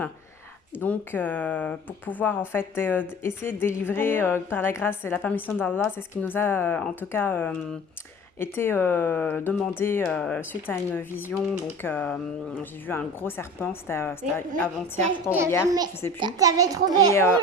Donc pour pouvoir en fait essayer de délivrer par la grâce et la permission d'Allah, c'est ce qui nous a en tout cas été demandé suite à une vision. Donc j'ai vu un gros serpent, c'était avant-hier, je crois, ou hier, je sais plus. T'avais trouvé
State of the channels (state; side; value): normal; both; correlation 0.39